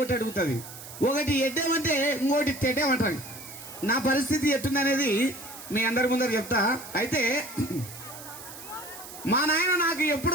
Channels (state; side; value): noise; right; hiss, 14 dB below the sound